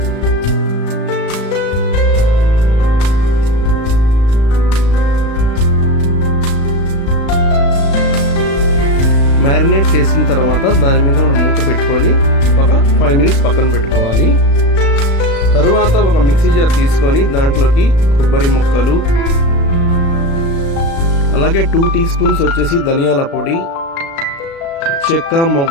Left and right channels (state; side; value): late; right; 36 ms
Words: మ్యారినేట్ చేసిన తర్వాత దాని మీద మనం మూత పెట్టుకొని ఒక 5 minutes పక్కన పెట్టుకోవాలి. తరువాత ఒక మిక్సీ జార్ తీసుకొని దాంట్లోకి కొబ్బరి ముక్కలు, అలాగే 2 teaspoons వచ్చేసి ధనియాల పొడి, చెక్క,